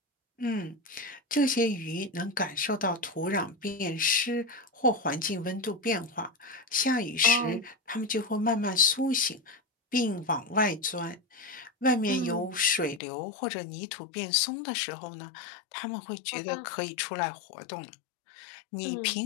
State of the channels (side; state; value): right; drops out; at 13.0 s